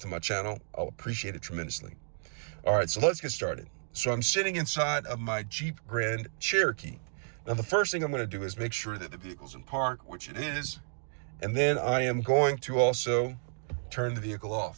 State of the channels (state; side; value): silent; left; digital silence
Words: my channel? I'll appreciate it tremendously. All right, so let's get started. So I'm sitting inside of my Jeep Grand Cherokee. Now, the first thing I'm going to do is make sure that the vehicle's in park, which it is. And then I am going to also turn the vehicle